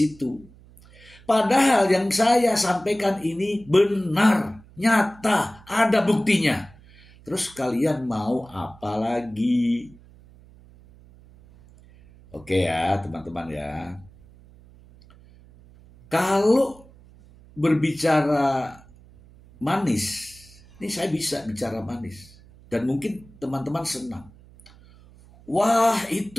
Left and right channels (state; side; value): noise; right; hum, 24 dB below the sound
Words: Padahal yang saya sampaikan ini benar, nyata, ada buktinya. Terus kalian mau apa lagi? Oke ya teman-teman ya. Kalau berbicara manis, ini saya bisa bicara manis. Dan mungkin teman-teman senang. Wah,